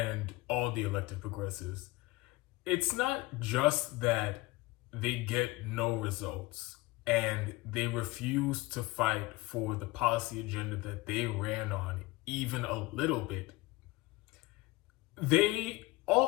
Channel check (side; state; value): right; quieter; 20.6 dB